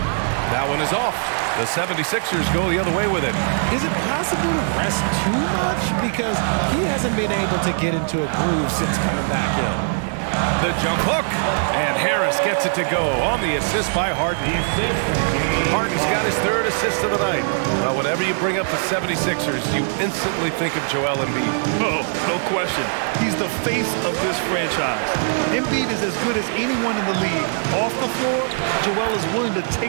That one is off. The 76ers go the other way with it. Is it possible to rest too much? Because he hasn't been able to get into a groove since coming back in. The jump hook, and Harris gets it to go on the assist by Harden. Harden's got his 3rd assist of the night. Well, whenever you bring up the 76ers, you instantly think of Joel Embiid. Oh, no question. He's the face of this franchise. Embiid is as good as anyone in the league. Off the floor, Joel is willing to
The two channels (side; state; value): left; silent; 57 dB below the other